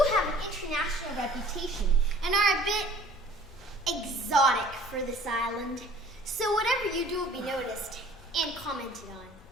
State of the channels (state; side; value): normal; both; correlation 0.52